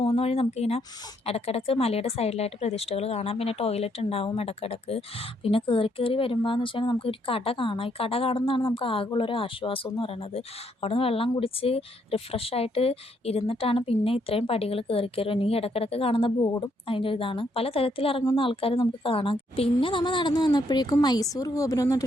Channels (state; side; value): normal; both; correlation 0.73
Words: വഴി നമുക്കിങ്ങനെ ഇടയ്ക്കിടയ്ക്ക് മലയുടെ സൈഡിലായിട്ട് പ്രതിഷ്ഠകൾ കാണാം. പിന്നെ ടോയ്ലറ്റ് ഉണ്ടാവും ഇടയ്ക്കിടയ്ക്ക്. പിന്നെ കയറി വരുമ്പോൾ എന്ന് വെച്ചാൽ നമുക്കൊരു കട കാണാം. ഈ കട കാണുന്നതാണ് നമുക്ക് ആകെയുള്ളൊരു ആശ്വാസം എന്ന് പറയുന്നത്. അവിടെ നിന്ന് വെള്ളം കുടിച്ച് റിഫ്രഷായിട്ട് ഇരുന്നിട്ടാണ് പിന്നെ ഇത്രയും പടികൾ കയറി ഇനി ഇടയ്ക്കിടയ്ക്ക് കാണുന്ന ബോർഡും അതിൻ്റെ ഇതാണ്. പല തരത്തിൽ ഇറങ്ങുന്ന ആൾക്കാർ നമുക്ക് കാണാം. പിന്നെ നമ്മൾ നടന്നു വന്നപ്പോഴേക്കും മൈസൂർ ഗോപുരം എന്ന്